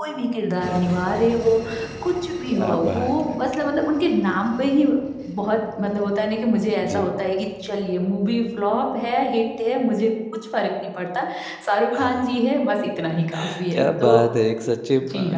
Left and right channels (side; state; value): both; identical; correlation 1.00